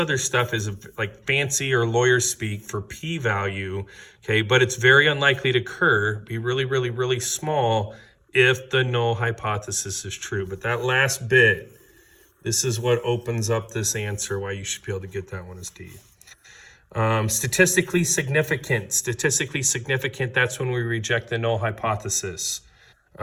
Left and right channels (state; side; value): identical; both; correlation 1.00